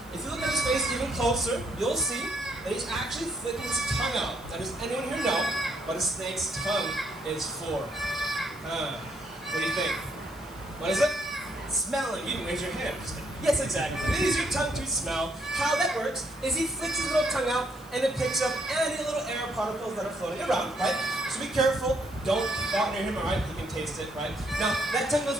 If you look at his face even closer, you'll see that he's actually flicking his tongue out. Now, does anyone here know what a snake's tongue is for? What do you think? What is it? Smelling. You didn't raise your hand. Yes, exactly. Use your tongue to smell. How that works is he flicks his little tongue out and it picks up any little air particles that are floating around, right? So be careful. Don't go near him, alright? He can taste it, right? Now, that tongue goes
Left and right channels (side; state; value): left; noise; hiss, 23 dB below the sound